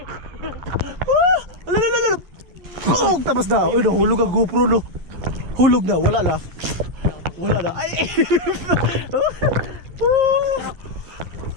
Tapos na. Uy, nahulog ang GoPro, no? Hulog na, wala na. Wala na. Ay!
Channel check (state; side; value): late; left; 11 ms